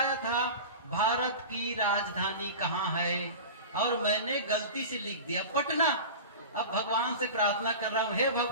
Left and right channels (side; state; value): both; inverted; correlation -0.31